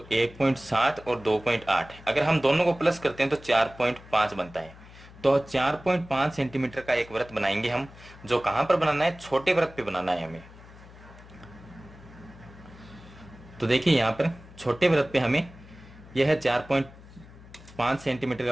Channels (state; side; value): noise; left; hum, 20 dB below the sound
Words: 1.7 और 2.8, अगर हम दोनों को प्लस करते हैं तो 4.5 बनता है। तो 4.5 सेंटीमीटर का एक वृत्त बनाएंगे हम, जो कहां पर बनाना है, छोटे वृत्त पे बनाना है हमें। तो देखिए यहां पर छोटे वृत्त पे हमें यह है 4.5 सेंटीमीटर